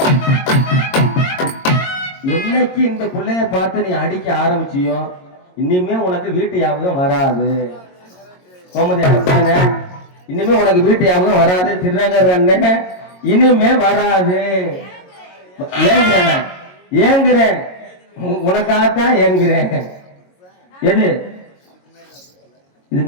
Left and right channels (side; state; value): right; late; 22 ms